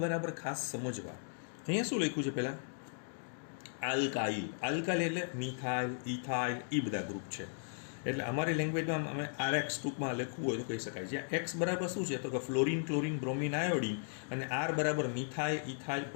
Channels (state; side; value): silent; right; digital silence